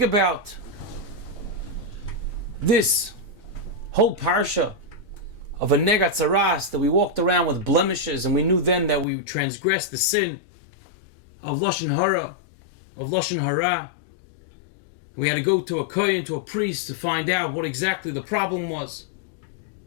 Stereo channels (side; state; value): right; drops out; at 9.1 s